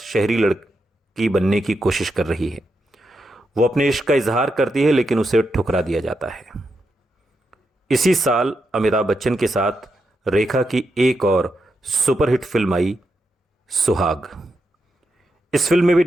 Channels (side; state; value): both; normal; correlation 0.84